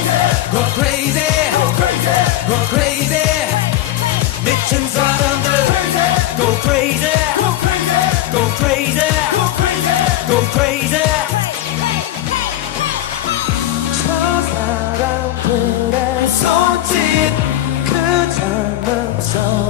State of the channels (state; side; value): quieter; right; 13.7 dB